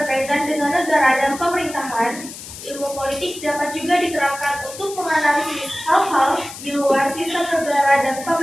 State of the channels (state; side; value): noise; left; hiss, 13 dB below the sound